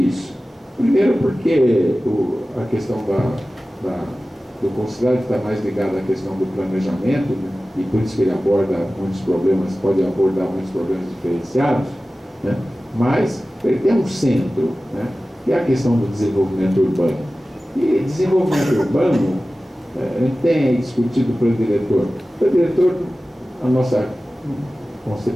Primeiro porque a questão do Concidade está mais ligada à questão do planejamento, né? E por isso que ele aborda muitos problemas, pode abordar muitos problemas diferenciados, né? Mas ele tem um centro, né? Que é a questão do desenvolvimento urbano. E desenvolvimento urbano, a gente tem aí discutido o plano diretor. O plano diretor, a nossa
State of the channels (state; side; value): normal; both; correlation 0.96